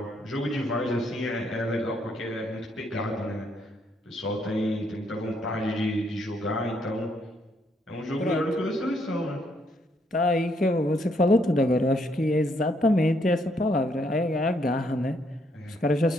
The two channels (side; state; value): both; normal; correlation 0.72